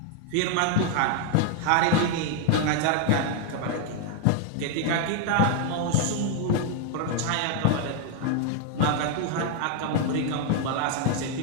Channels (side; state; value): both; different; correlation 0.00